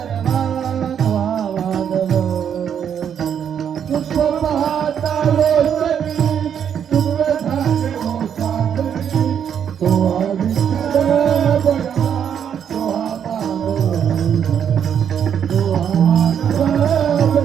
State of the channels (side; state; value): left; quieter; 8.4 dB